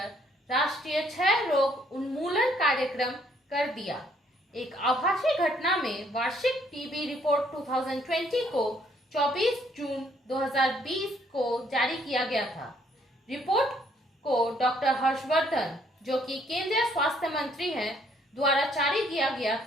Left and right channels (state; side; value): normal; both; correlation 0.66